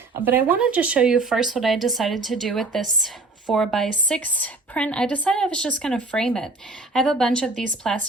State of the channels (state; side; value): quieter; left; 3.3 dB